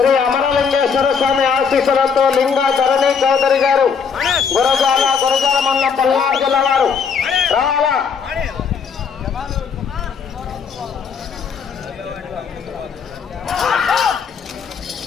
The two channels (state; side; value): quieter; right; 6.1 dB